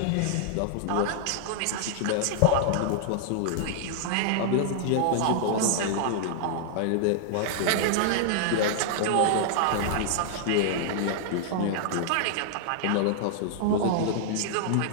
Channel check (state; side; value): different; both; correlation -0.01